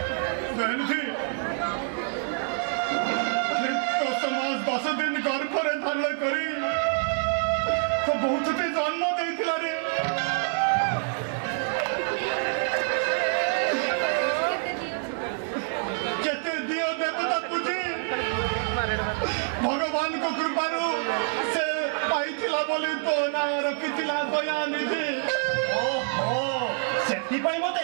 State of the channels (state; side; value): silent; left; 60 dB below the other